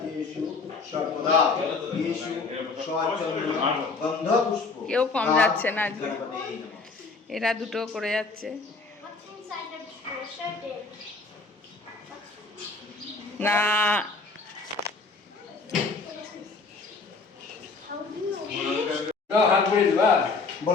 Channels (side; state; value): right; quieter; 4.1 dB